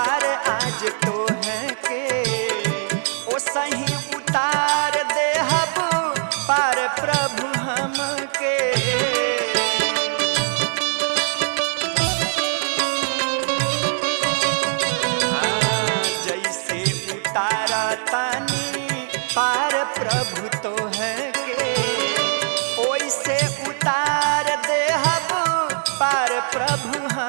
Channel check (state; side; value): silent; left; digital silence